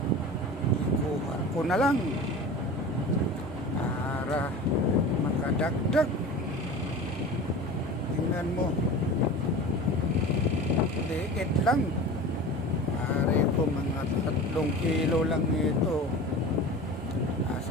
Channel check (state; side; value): normal; both; correlation 0.35